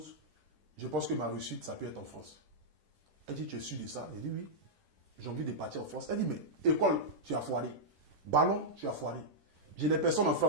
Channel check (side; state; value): left; late; 10 ms